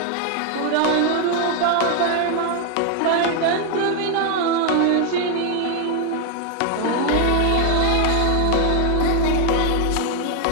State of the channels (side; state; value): both; different; correlation 0.00